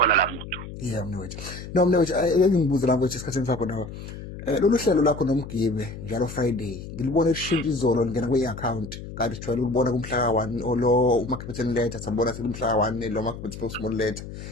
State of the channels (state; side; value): noise; left; hum, 11 dB below the sound